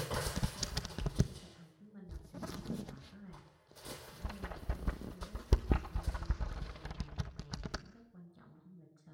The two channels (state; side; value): identical; both; correlation 1.00